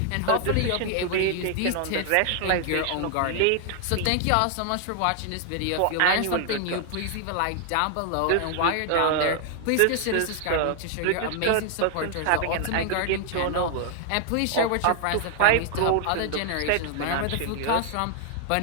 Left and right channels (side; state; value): both; different; correlation 0.00